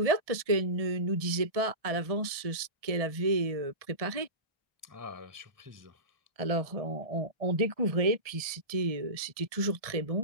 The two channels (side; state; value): left; late; 1.6 ms